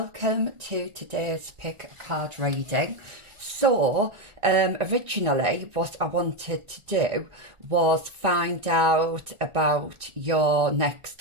to today's pick a card reading. So originally what I wanted to do was find out about your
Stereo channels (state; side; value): late; left; 1.4 ms